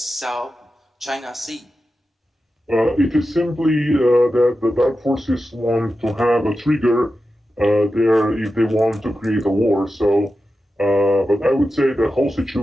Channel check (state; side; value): normal; both; correlation 0.92